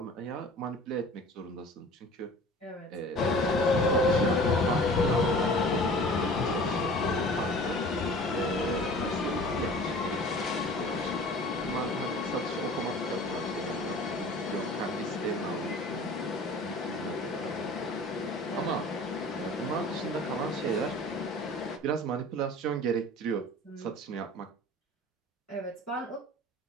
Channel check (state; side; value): normal; both; correlation 0.43